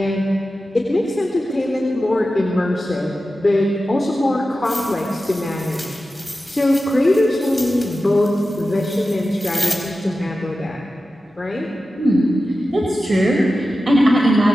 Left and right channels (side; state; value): both; normal; correlation 0.93